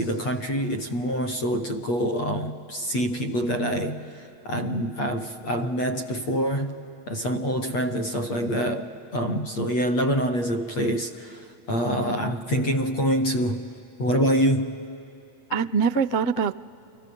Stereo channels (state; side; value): late; right; 8.5 ms